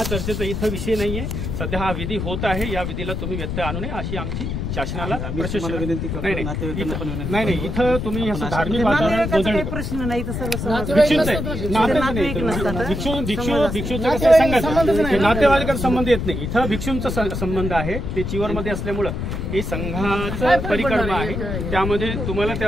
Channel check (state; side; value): noise; left; rumble, 3 dB below the sound